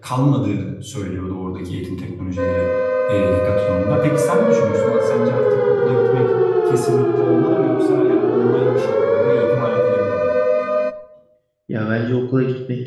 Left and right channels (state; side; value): identical; both; correlation 1.00